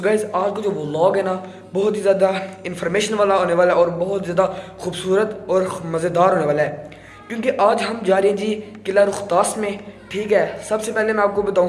guys, आज का जो व्लॉग है ना, बहुत ही ज़्यादा इन्फॉर्मेशन वाला होने वाला है और बहुत ज़्यादा खूबसूरत और मज़ेदार होने वाला है, क्योंकि आज हम जा रहे हैं जी किला रुख्तास में। ठीक है, सबसे पहले मैं आपको बताऊं,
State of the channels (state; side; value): identical; both; correlation 1.00